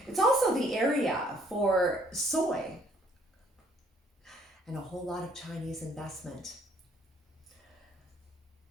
It's also the area for soy and a whole lot of Chinese investment.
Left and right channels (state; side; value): normal; both; correlation 0.62